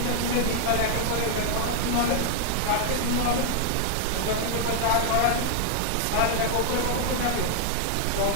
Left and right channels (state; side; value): different; both; correlation 0.00